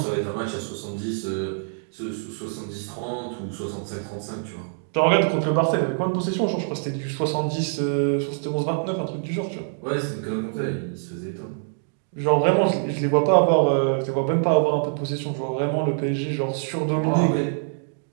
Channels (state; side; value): silent; left; digital silence